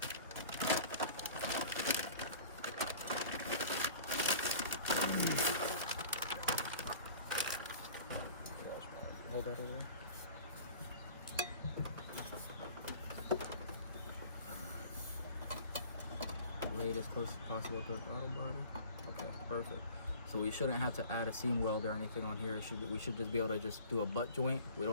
Hold that over there. Lay it as close as possible to the throttle body. Okay, perfect. So we shouldn't have to add a seam weld or anything on here. We should just be able to just do a butt joint. We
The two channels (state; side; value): inverted; both; correlation -0.44